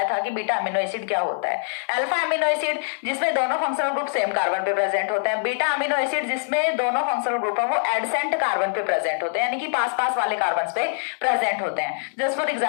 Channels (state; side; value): silent; right; digital silence